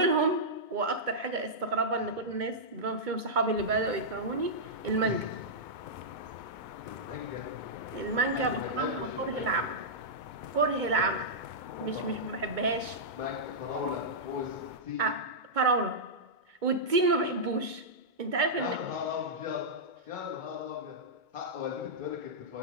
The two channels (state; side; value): late; left; 2.2 ms